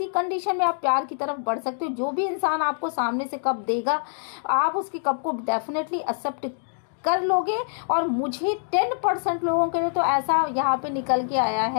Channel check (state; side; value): silent; right; digital silence